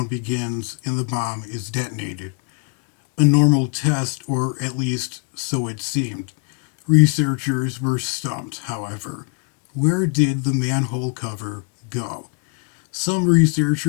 begins and the bomb is detonated. A normal test, or at least so it seemed. Researchers were stumped, however. Where did the manhole cover go? Some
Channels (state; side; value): quieter; right; 36.3 dB